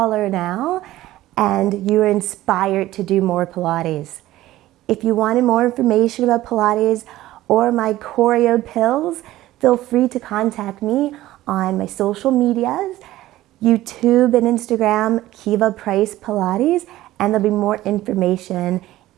now and you're inspired to do more Pilates. If you wanted more information about Pilates or my choreo pills, feel free to contact me on my social medias, YouTube and Instagram, Kiva Price Pilates, and there'll be more information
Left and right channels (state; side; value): quieter; left; 15.6 dB